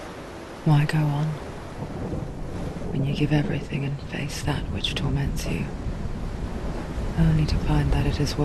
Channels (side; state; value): both; identical; correlation 1.00